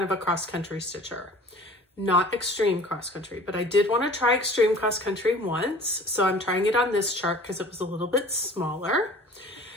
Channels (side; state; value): both; normal; correlation 0.46